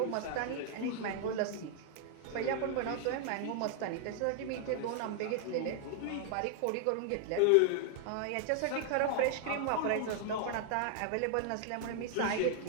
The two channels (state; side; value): different; both; correlation 0.00